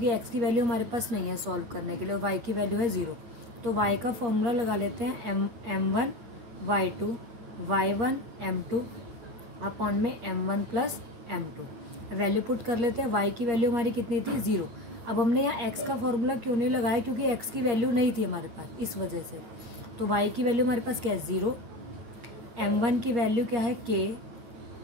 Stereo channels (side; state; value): left; late; 8.5 ms